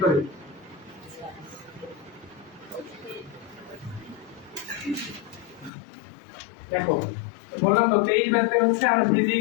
দেখো বললাম তো 23 ব্যাচ থেকে হচ্ছে আমরা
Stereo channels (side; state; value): right; drops out; at 5.7 s